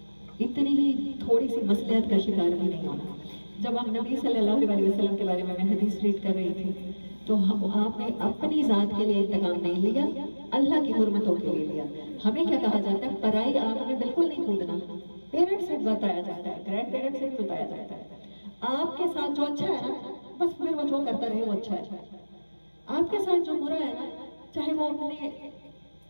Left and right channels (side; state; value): both; inverted; correlation -1.00